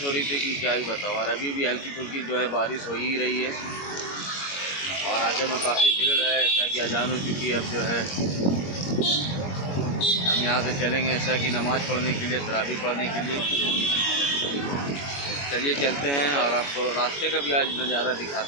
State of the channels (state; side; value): late; right; 21 ms